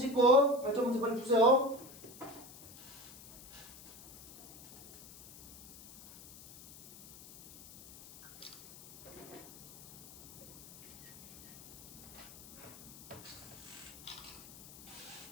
발전 문제 빨리 푸세요.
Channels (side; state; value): left; noise; hiss, 19 dB below the sound